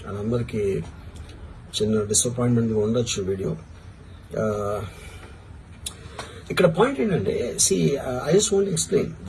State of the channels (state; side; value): identical; both; correlation 1.00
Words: అందరికీ చిన్న డిసప్పాయింట్మెంట్గా ఉండొచ్చు వీడియో. ఇక్కడ పాయింట్ ఏంటంటే, I just want explain